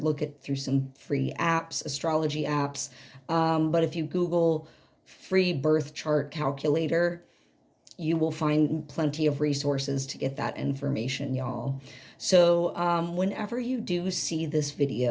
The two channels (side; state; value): both; identical; correlation 1.00